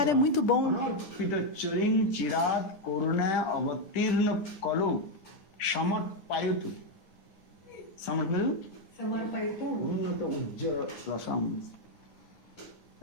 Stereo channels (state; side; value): late; right; 10 ms